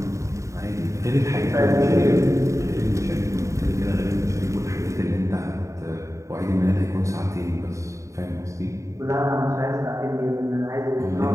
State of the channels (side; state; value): left; late; 0.15 ms